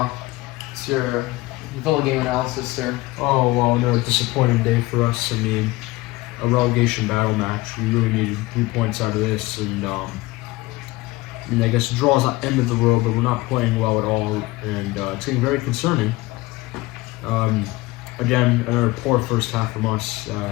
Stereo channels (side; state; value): right; quieter; 20.4 dB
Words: it's your Villa game analysis, sir. Oh, well, no, disappointing day for us. A relegation battle match. We really needed 3 points out of this, and I guess a draw is not the end of the world, but we're not playing well at all, and it's getting very concerning. Again, another poor first half from us.